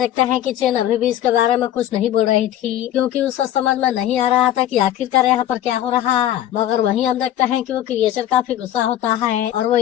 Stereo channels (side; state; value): right; quieter; 12.1 dB